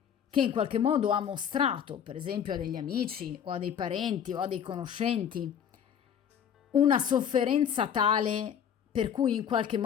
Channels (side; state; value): right; quieter; 8.5 dB